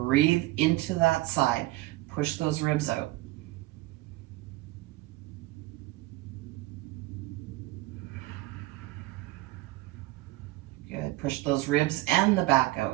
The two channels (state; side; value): quieter; left; 18.8 dB